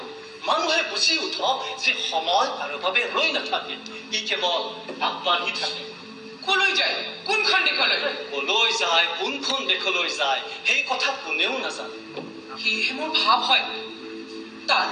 মানুহে বুজি উঠক যে সময় কাৰো বাবে ৰৈ নাথাকে ই কেৱল আগবাঢ়ি থাকে কলৈ যায় কোনখন দেশলৈ কলৈ যায় কোনখন দেশলৈ যায় সেই কথা কোনেও নাজানে সেয়েহে মোৰ ভাৱ হয়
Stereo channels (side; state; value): both; identical; correlation 1.00